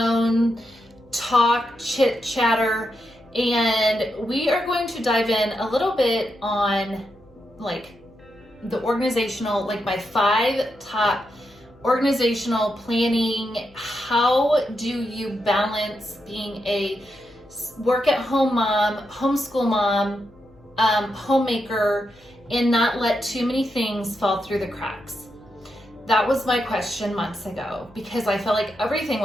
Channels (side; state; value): left; noise; hum, 29 dB below the sound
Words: talk, chit chatter, and we are going to dive in a little bit on like the organizational, like my 5 top organizational planning. How do you balance being a work at home mom, homeschool mom, homemaker, and not let too many things fall through the cracks? That was my question months ago because I felt like everything